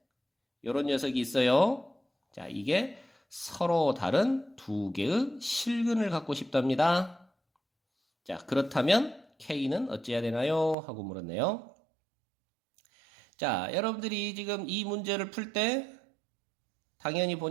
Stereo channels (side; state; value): left; drops out; at 10.8 s